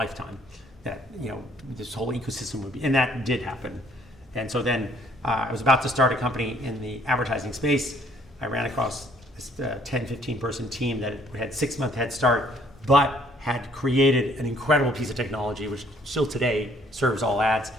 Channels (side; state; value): both; normal; correlation 0.62